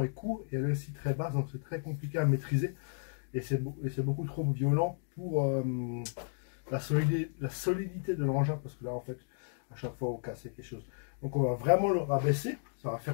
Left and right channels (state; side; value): silent; right; digital silence